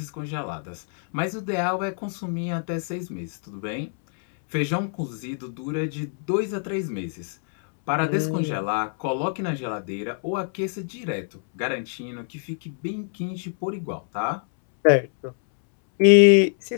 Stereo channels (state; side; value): silent; right; 62 dB below the other